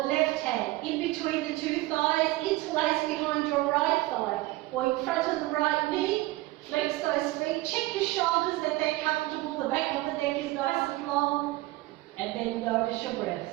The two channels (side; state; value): left; quieter; 19.2 dB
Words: the left hand in between the two thighs, interlace behind your right thigh, or in front of the right knee, flex those feet, check your shoulders that they're comfortable, the back of the neck is nice and long, and then notice your